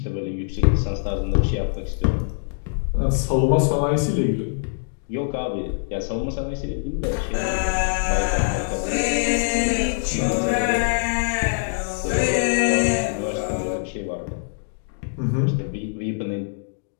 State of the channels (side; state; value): right; silent; digital silence